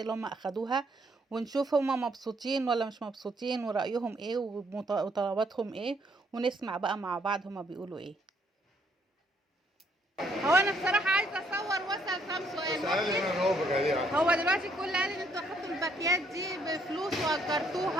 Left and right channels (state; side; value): normal; both; correlation 0.70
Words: اللي هم اخدوها، ونشوف هم مبسوطين ولا مش مبسوطين ورايهم ايه وطلباتهم ايه، ونسمع بقى مع بعض هم بيقولوا ايه. هو انا بصراحه عايزه اصور واسال كام سؤال. هو دلوقتي الكل قال ان انتوا اخدتوا الباكيات دي بفلوس